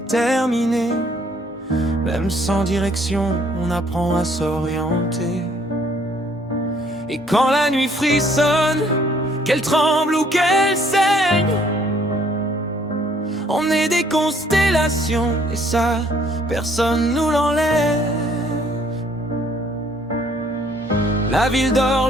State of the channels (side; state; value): both; normal; correlation 0.63